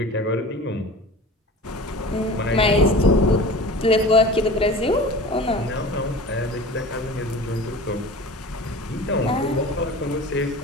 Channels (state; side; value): normal; both; correlation 0.38